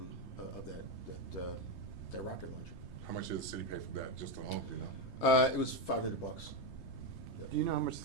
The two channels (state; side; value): late; right; 3.3 ms